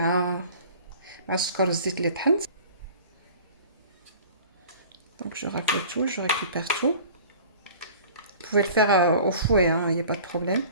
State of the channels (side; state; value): both; inverted; correlation -0.44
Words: السكر والزيت اللي طحنت. Donc je racle tout, je récupère tout. Vous pouvez le faire au fouet, il n'y a pas de problème.